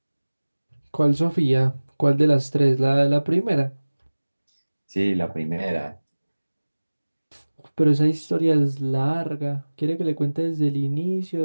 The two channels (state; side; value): inverted; both; correlation -1.00